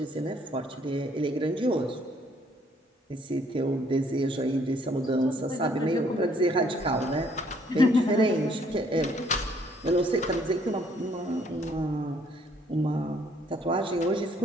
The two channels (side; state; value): both; normal; correlation 0.65